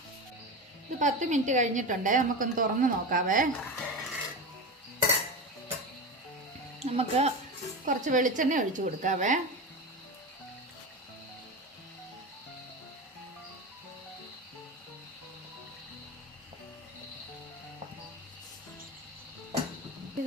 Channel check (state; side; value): normal; both; correlation 0.23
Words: ഇത് 10 മിനിറ്റ് കഴിഞ്ഞിട്ടുണ്ട്. നമുക്കൊന്ന് തുറന്ന് നോക്കാവേ. നമുക്ക് കുറച്ച് വെളിച്ചെണ്ണ ഒഴിച്ചു കൊടുക്കാവേ.